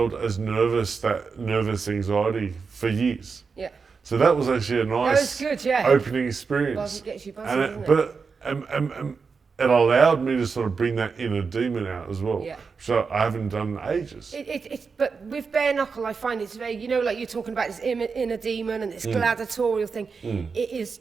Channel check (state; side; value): quieter; left; 5.2 dB